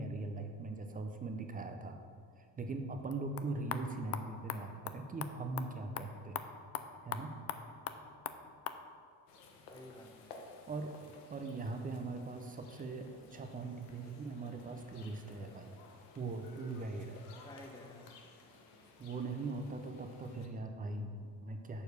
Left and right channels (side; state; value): both; normal; correlation 0.44